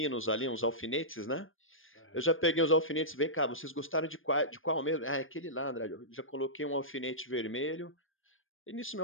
ali, uns alfinetes, né. Eu Aham. já peguei os alfinetes: "Vem cá, vocês gostaram de qual mesmo?". "Ah, é aquele lá, Andrade". Eu já coloquei um alfinete vermelho, e nisso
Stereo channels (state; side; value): late; right; 0.59 ms